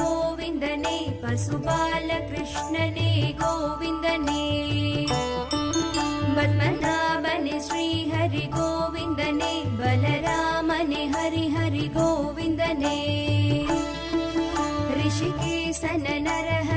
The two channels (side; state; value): both; identical; correlation 1.00